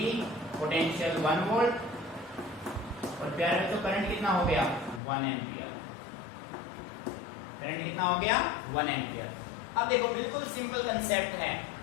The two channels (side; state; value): right; drops out; at 5.0 s